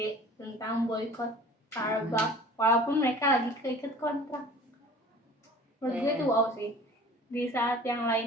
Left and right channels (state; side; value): normal; both; correlation 0.45